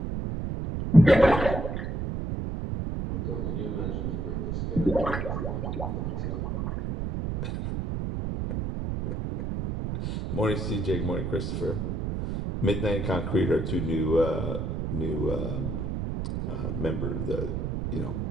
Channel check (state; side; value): noise; right; rumble, 2 dB below the sound